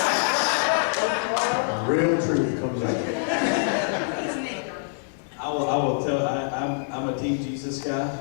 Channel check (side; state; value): right; silent; digital silence